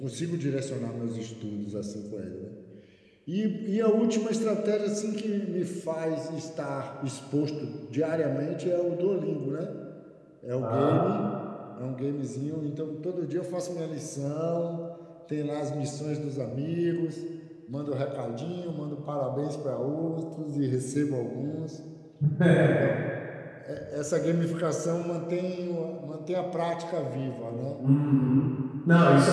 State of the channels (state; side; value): identical; both; correlation 1.00